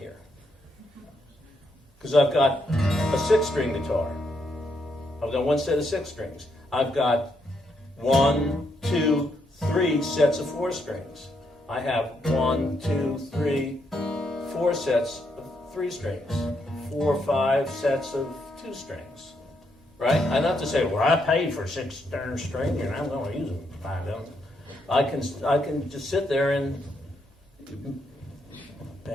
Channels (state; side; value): normal; both; correlation 0.77